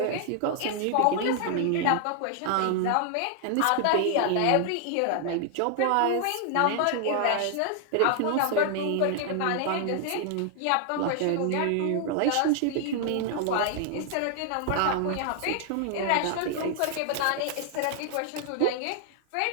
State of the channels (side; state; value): both; different; correlation 0.00